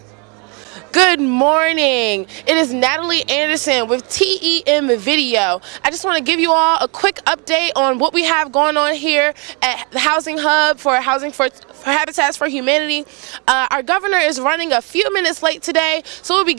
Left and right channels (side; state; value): left; quieter; 33.7 dB